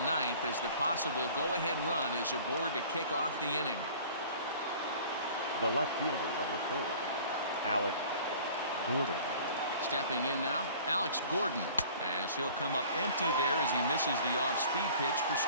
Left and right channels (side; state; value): both; inverted; correlation -0.47